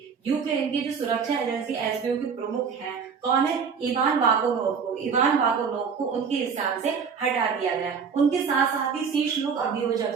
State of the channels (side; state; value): left; quieter; 6.2 dB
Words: यूक्रेन की जो सुरक्षा एजेंसी एसबीयू के प्रमुख है कौन है? इवान वागोनोव को उनके स्थान से हटा दिया गया। उनके साथ साथ ही शीर्ष लोक